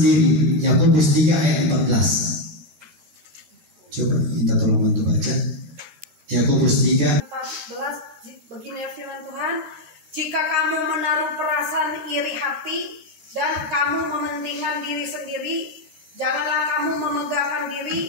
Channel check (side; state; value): left; late; 12 ms